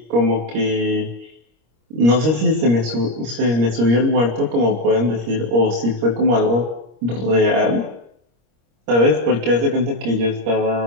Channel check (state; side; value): late; left; 25 ms